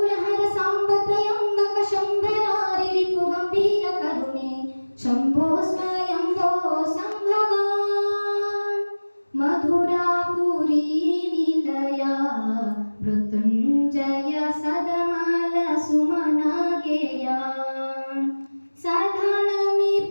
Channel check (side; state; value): both; inverted; correlation -1.00